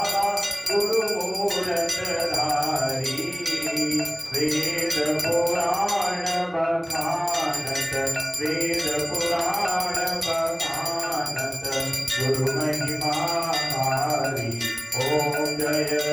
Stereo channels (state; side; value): identical; both; correlation 1.00